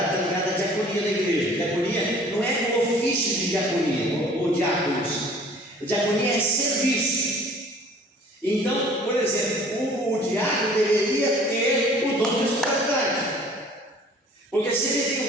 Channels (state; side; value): normal; both; correlation 0.51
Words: está ligado à diaconia da igreja. Diaconia não é o ofício de diaconia ou diáconos. Diaconia é serviço. Então, por exemplo, o diácono deveria ter o dom da hospitalidade. Porque se ele tem